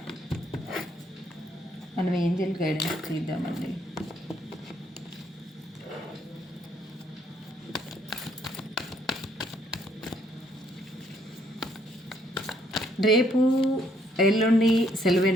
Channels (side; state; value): both; normal; correlation 0.69